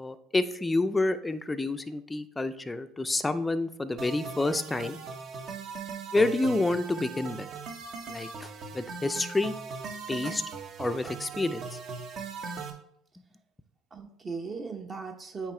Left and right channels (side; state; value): both; normal; correlation 0.89